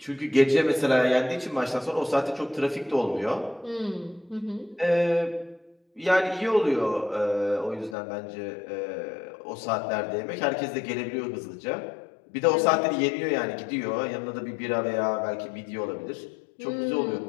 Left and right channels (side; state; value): right; drops out; at 8.0 s